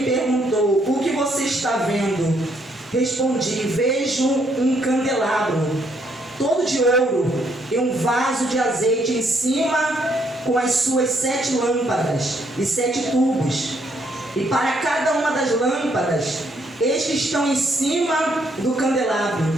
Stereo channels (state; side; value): normal; both; correlation 0.71